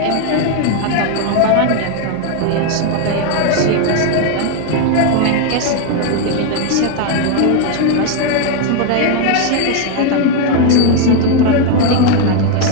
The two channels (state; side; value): different; both; correlation 0.01